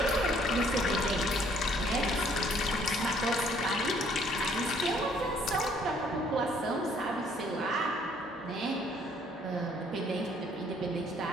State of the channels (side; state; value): both; normal; correlation 0.62